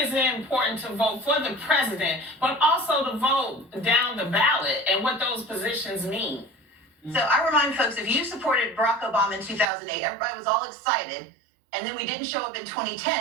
it important to vote for the president, but also to vote down the ballot and what those positions mean? So I remind folks, if you supported Barack Obama in 2008, everybody was all excited, and then we didn't show up in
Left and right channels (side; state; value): left; drops out; at 9.7 s